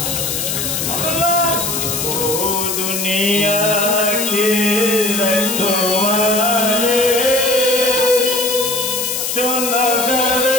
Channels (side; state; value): left; noise; hiss, 2 dB below the sound